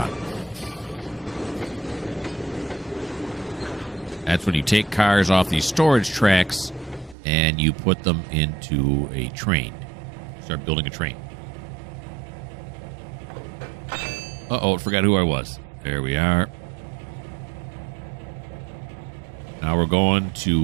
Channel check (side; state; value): left; drops out; at 7.2 s